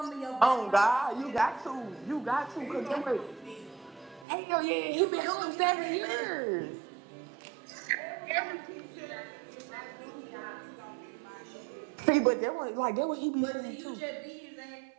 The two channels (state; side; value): drops out; left; at 4.2 s